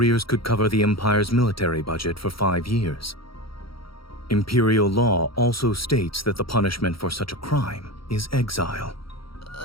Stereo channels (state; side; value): late; right; 0.75 ms